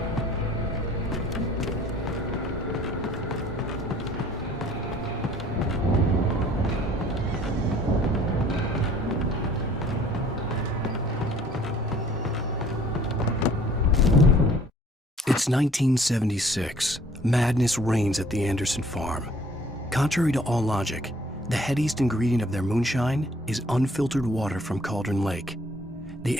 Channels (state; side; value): normal; both; correlation 0.55